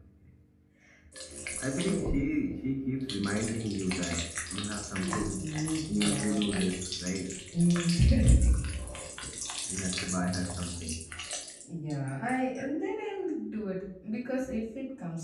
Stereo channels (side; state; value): both; identical; correlation 1.00